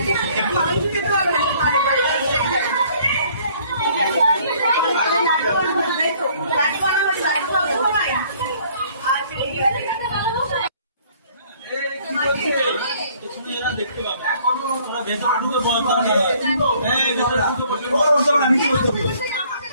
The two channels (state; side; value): inverted; both; correlation -0.59